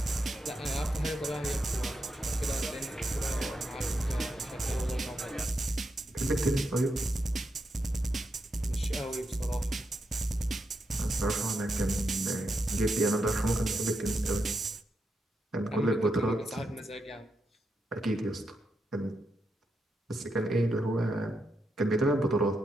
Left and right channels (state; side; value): normal; both; correlation 0.84